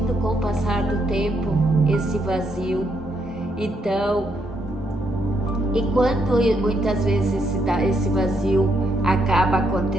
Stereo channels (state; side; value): normal; both; correlation 0.76